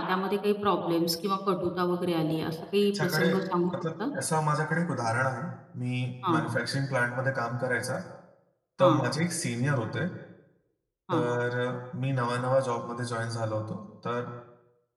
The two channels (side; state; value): both; identical; correlation 1.00